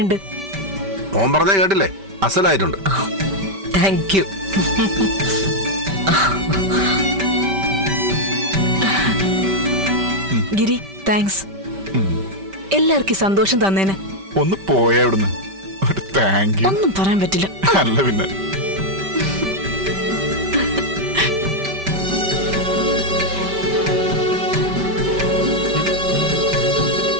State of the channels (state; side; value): late; left; 5.1 ms